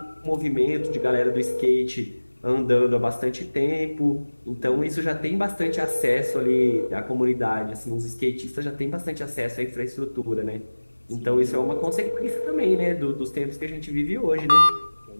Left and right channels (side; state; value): both; inverted; correlation -1.00